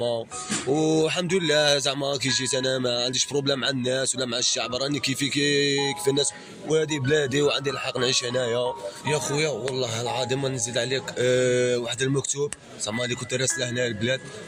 والحمد لله زعما كي جيت انا ما عنديش بروبليم مع الناس ولا مع الشعب، راني كيفي كيف الناس، وهذه بلادي وعندي الحق نعيش هنايا. يا خويا والله العظيم ما نزيد عليك، واحد المكتوب زعما اللي كنت راسله هنا البلاد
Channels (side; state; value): both; identical; correlation 1.00